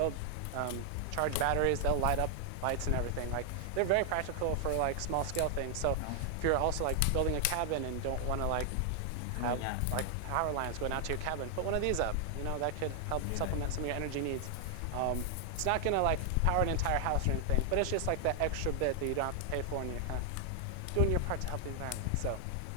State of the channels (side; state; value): both; different; correlation 0.00